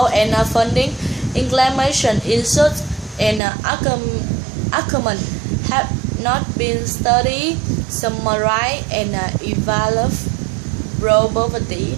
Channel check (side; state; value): left; drops out; at 3.4 s